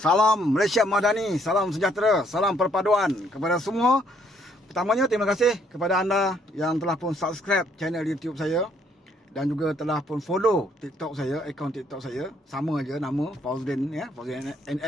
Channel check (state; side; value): normal; both; correlation 0.67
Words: Malaysia Madani, salam sejahtera, salam perpaduan kepada semua. Pertamanya terima kasih kepada anda yang telah pun subscribe channel YouTube saya dan juga telah pun follow TikTok saya, akaun TikTok saya. Sama aja nama Fauzdin ya, Fauzdin